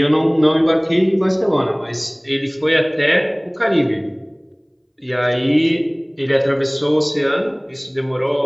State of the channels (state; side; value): identical; both; correlation 1.00